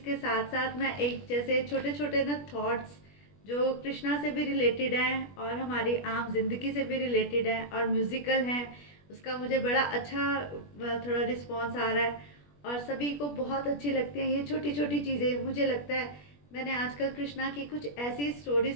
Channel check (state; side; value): late; right; 21 ms